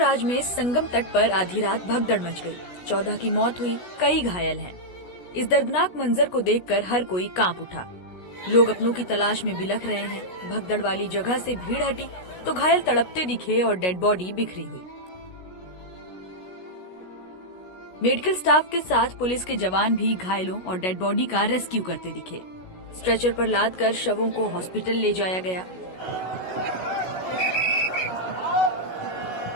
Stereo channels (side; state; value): right; late; 16 ms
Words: में संगम तट पर आधी रात भगदड़ मच गई। 14 की मौत हुई, कई घायल हैं। इस दर्दनाक मंजर को देखकर हर कोई कांप उठा। लोग अपनों की तलाश में बिलख रहे हैं। भगदड़ वाली जगह से भीड़ हटी तो घायल तड़पते दिखे और डेड बॉडी बिखरी हुई। मेडिकल स्टाफ के साथ पुलिस के जवान भी घायलों और डेड बॉडी का रेस्क्यू करते दिखे। स्ट्रेचर पर लादकर शवों को हॉस्पिटल ले जाया गया।